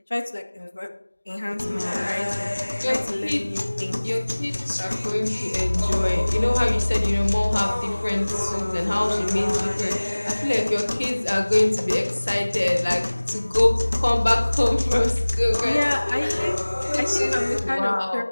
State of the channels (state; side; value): inverted; both; correlation -1.00